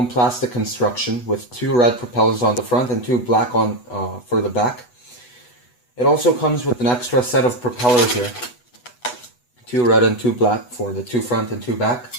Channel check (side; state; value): right; late; 8.1 ms